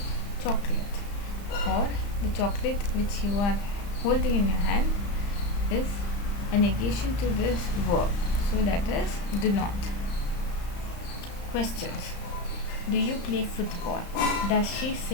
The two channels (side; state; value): right; late; 35 ms